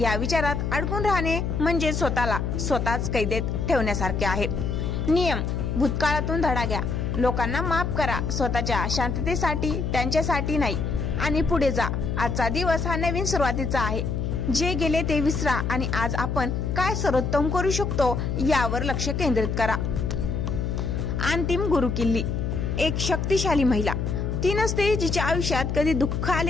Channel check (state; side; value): noise; left; hum, 1 dB below the sound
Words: विचारात अडकून राहणे म्हणजे स्वतःच कैदेत ठेवण्यासारखे आहे. नियम: भूतकाळातून धडा घ्या. लोकांना माफ करा, स्वतःच्या शांततेसाठी, त्यांच्यासाठी नाही, आणि पुढे जा. आजचा दिवस हा नवीन सुरुवातीचा आहे. जे गेले ते विसरा आणि आज आपण काय सर्वोत्तम करू शकतो यावर लक्ष केंद्रित करा. अंतिम गुरुकिल्ली. एक शक्तिशाली महिला ती नसते जिच्या आयुष्यात कधी दुःख